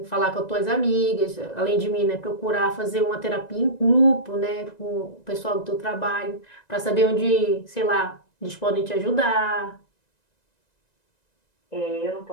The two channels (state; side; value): late; right; 1.9 ms